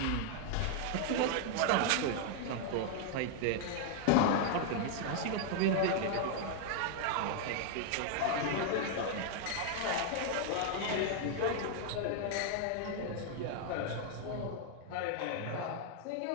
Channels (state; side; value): different; both; correlation 0.00